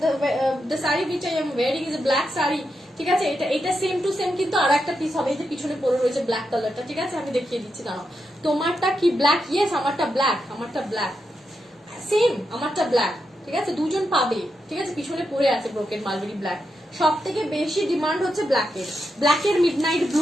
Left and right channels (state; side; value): normal; both; correlation 0.85